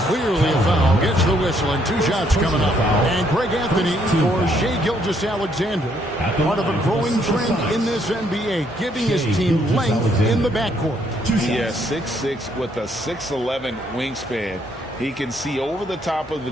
clearly a foul. Gets the whistle and two shots coming up. And Greg Anthony for Shai Gilgeous-Alexander. Part of a growing trend in this NBA, giving his team length in the backcourt. Yes, 6'6" with a 6'11" wingspan. He can see over the top of the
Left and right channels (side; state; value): both; normal; correlation 0.70